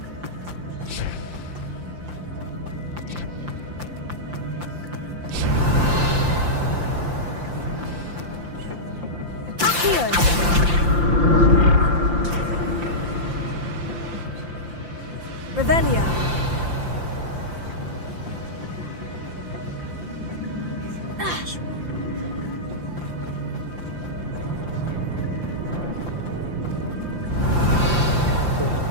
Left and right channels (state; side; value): late; left; 5.8 ms